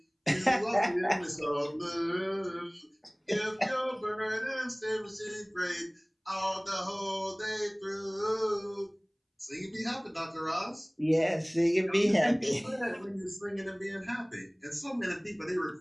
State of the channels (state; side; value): identical; both; correlation 1.00